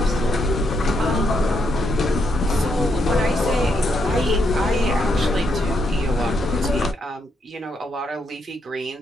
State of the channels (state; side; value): normal; both; correlation 0.78